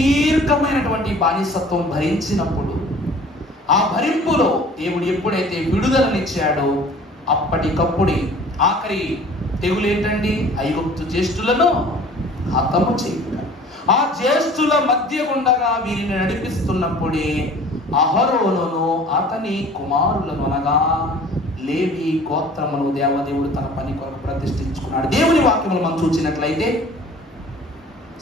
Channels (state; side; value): normal; both; correlation 0.48